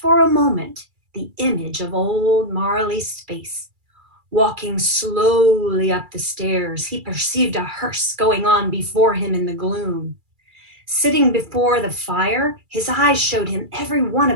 a moment, the image of old Marley's face. Walking slowly up the stairs, he perceived a hearse going on before him in the gloom. Sitting before the fire, his eyes showed him every one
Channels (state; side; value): late; left; 2.3 ms